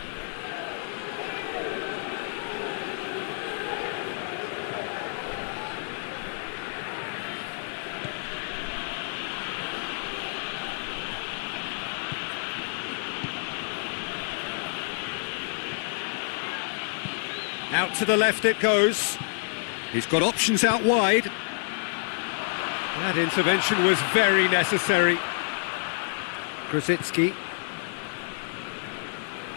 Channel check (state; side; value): silent; right; 59 dB below the other